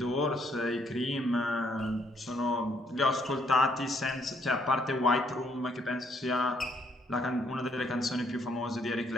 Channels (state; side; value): normal; both; correlation 0.69